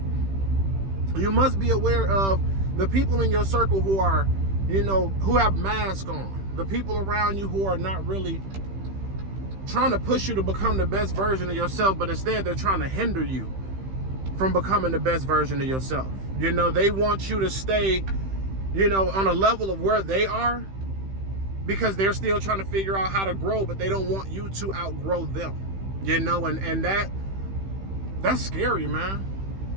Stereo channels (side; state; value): left; late; 15 ms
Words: You must be aware of The people in your circle who are, who have masks on. The people around you who are not really trying to push you to become the best version of yourself, but instead they're trying to hinder you from becoming the best version of yourself. They want you to stay, on a level of where they are, because they're still trying to figure out how to grow, but they don't want you to outgrow them. And that's scary, man.